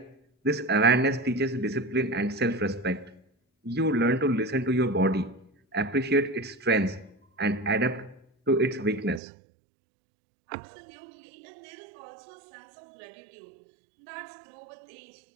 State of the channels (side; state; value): left; drops out; at 9.2 s